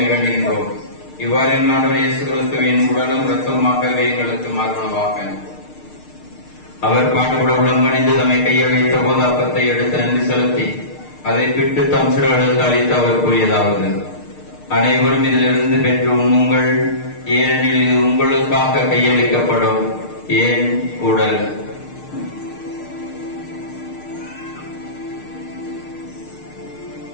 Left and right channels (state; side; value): late; right; 6.6 ms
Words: இவ்வாறு ஆண்டவர் இயேசு கிறிஸ்துவின் உடலும் இரத்தமாகவே எங்களுக்கு மாறுவனவாக. அவர் பாடுபட உடம்பணிந்து தம்மை கையில் வைத்த போது அப்பத்தை எடுத்து நன்றி செலுத்தி அதை பிட்டு தம் சிறுகளுக்கு அளித்து அவர் கூறியதாவது: அனைவரும் இதிலிருந்து பெற்று உண்ணுங்கள், ஏனெனில் இது உங்களுக்காக கையளிக்கப்படும் ஏன் உடல்.